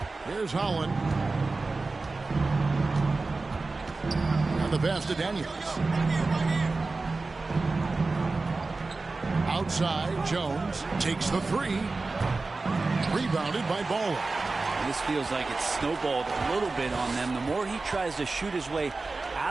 Here's Holland. And the pass to Daniels. Outside, Jones takes the 3. Rebounded by Bowler. This feels like it's snowballed a little bit on them. The more he tries to shoot his way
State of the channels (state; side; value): quieter; left; 3.6 dB